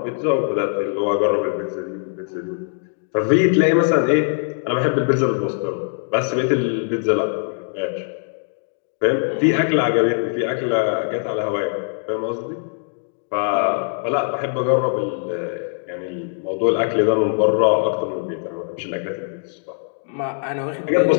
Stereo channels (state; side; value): silent; right; 58 dB below the other